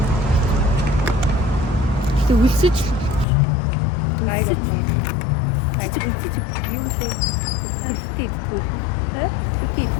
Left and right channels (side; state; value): right; drops out; at 3.2 s